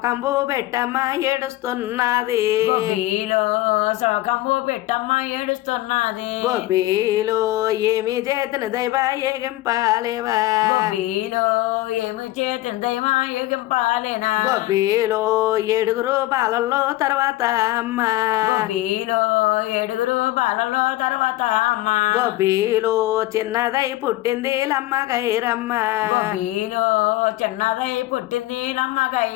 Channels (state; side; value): quieter; right; 17.2 dB